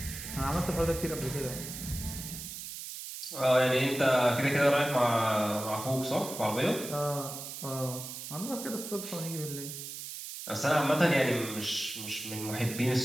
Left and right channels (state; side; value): noise; right; hiss, 9 dB below the sound